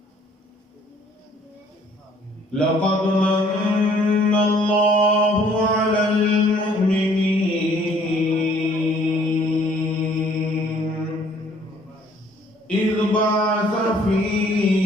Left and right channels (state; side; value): normal; both; correlation 0.59